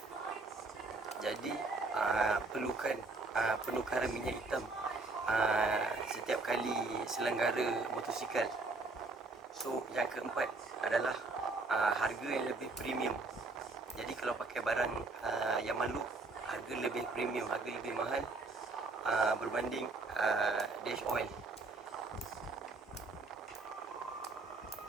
Jadi perlukan penukaran minyak hitam setiap kali selenggara motosikal. So yang keempat adalah harga yang lebih premium. Jadi kalau pakai barang Yamaha, harga lebih premium, harga lebih mahal berbanding dash oil.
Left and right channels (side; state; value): left; quieter; 3.7 dB